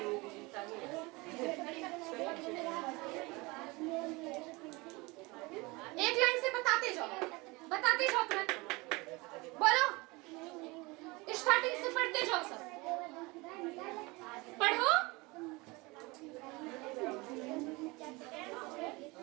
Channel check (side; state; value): left; quieter; 24.4 dB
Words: एक लाइन से बताते जाओ तुरंत। बोलो, स्टार्टिंग से पढ़ते जाओ, सब पढ़ो।